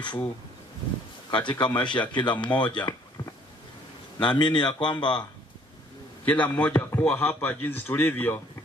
katika maisha ya kila mmoja. Naamini ya kwamba kila mmoja kuwa hapa jinsi tulivyo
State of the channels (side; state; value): both; normal; correlation 0.60